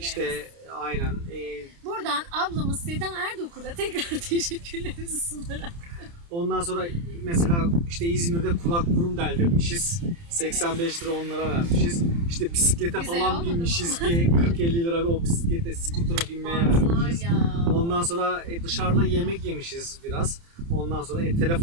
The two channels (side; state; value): left; late; 29 ms